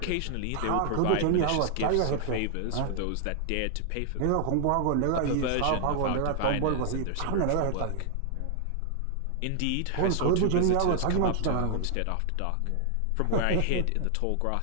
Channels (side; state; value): both; different; correlation 0.00